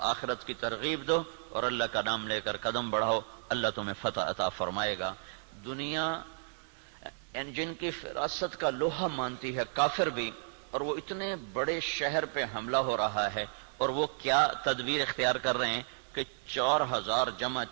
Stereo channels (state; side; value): silent; left; digital silence